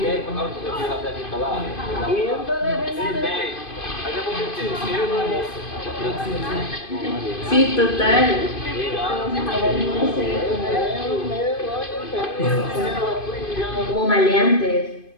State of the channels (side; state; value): right; late; 2.5 ms